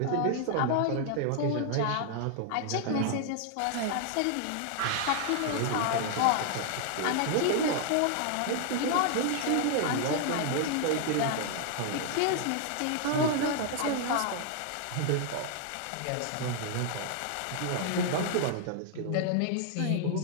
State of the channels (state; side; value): different; both; correlation 0.00